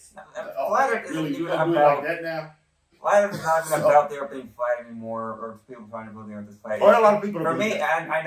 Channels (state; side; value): identical; both; correlation 1.00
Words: Flat Earth isn't even about like that now. Flat Earth is not even about the Earth being flat anymore, or people trying to believe the Earth is flat. Or a lot of people. For me, and I